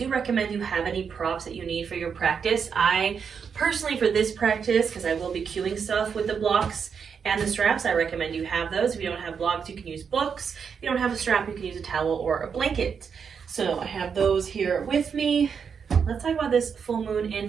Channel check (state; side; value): quieter; left; 6.5 dB